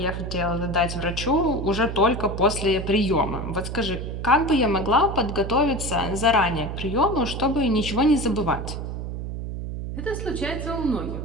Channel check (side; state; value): right; noise; hum, 6 dB below the sound